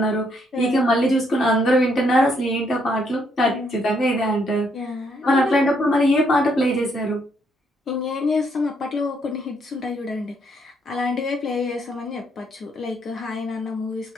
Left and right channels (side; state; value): both; normal; correlation 0.72